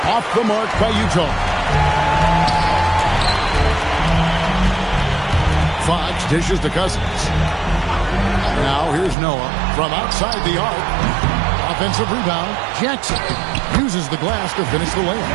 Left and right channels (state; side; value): drops out; left; at 9.2 s